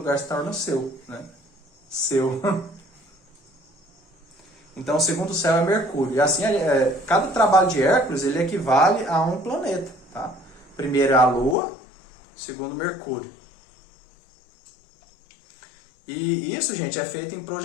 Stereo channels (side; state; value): right; drops out; at 11.6 s